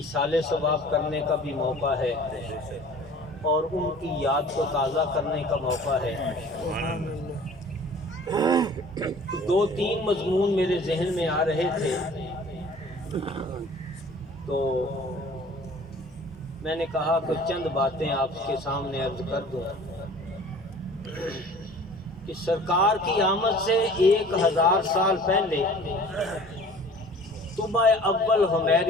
ثواب کرنے کا بھی موقع ہے اور ان کی یاد کو تازہ کرنے کا موقع ہے۔ 2-3 مضمون میرے ذہن میں آ رہے تھے، تو میں نے کہا کہ چند باتیں آپ کے سامنے عرض کر دوں کہ سرکار کی آمد سے 1000 سال پہلے طبع اول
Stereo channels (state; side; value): normal; both; correlation 0.47